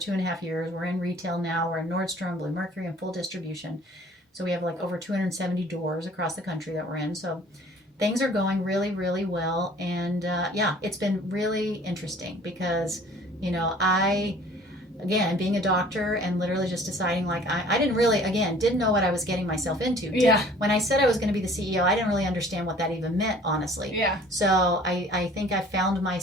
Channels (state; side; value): normal; both; correlation 0.51